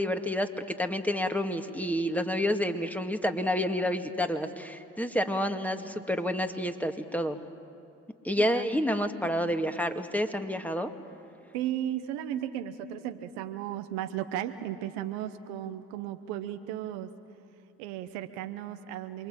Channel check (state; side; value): normal; both; correlation 0.65